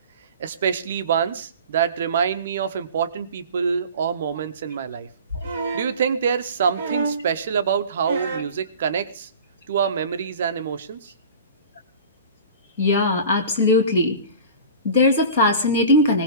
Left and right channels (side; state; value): both; inverted; correlation -0.40